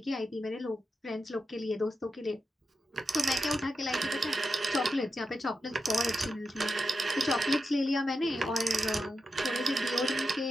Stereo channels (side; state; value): both; normal; correlation 0.88